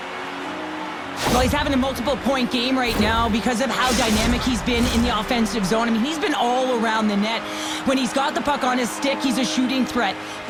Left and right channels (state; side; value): identical; both; correlation 1.00